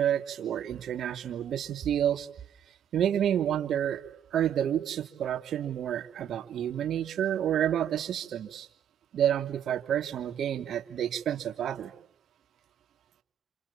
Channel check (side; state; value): left; quieter; 9.7 dB